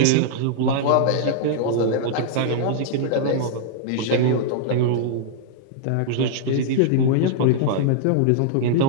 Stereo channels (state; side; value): different; both; correlation -0.01